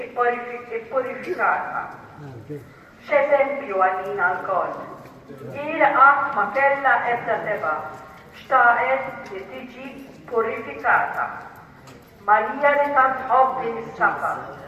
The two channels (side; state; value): both; identical; correlation 1.00